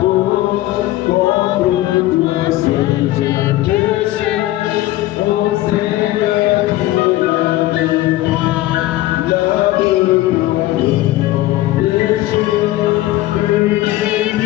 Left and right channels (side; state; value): right; quieter; 16.2 dB